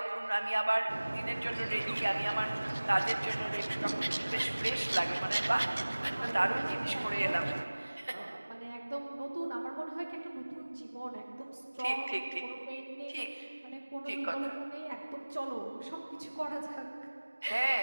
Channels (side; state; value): both; inverted; correlation -1.00